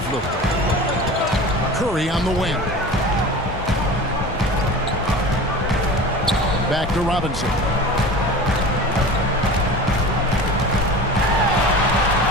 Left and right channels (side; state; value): both; normal; correlation 0.35